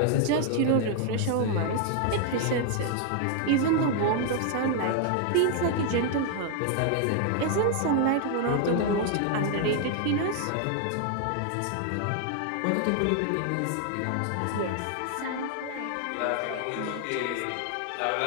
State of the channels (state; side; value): different; both; correlation 0.00